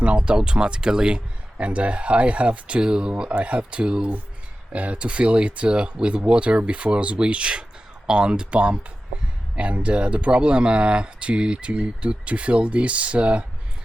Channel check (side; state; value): both; normal; correlation 0.94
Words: not automatically, and I have to fill it with water before switch on the pump. And the problem to fill this